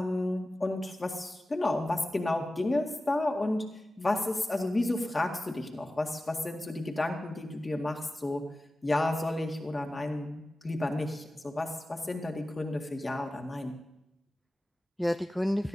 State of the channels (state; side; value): normal; both; correlation 0.95